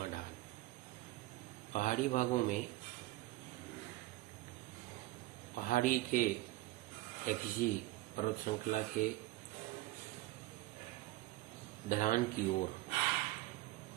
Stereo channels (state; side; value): quieter; left; 18.3 dB